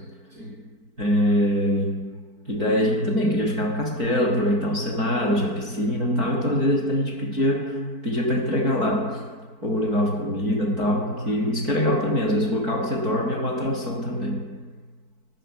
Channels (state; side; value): late; left; 4.5 ms